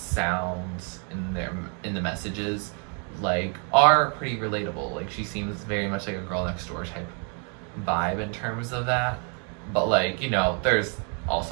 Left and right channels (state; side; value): quieter; left; 39.3 dB